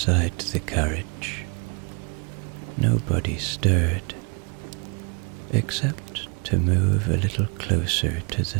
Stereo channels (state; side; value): quieter; left; 32.3 dB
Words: the carriage, nobody stirred, except to move a little closer to the